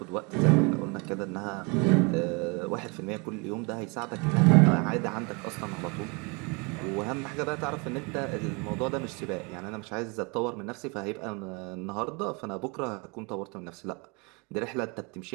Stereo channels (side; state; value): left; quieter; 30.6 dB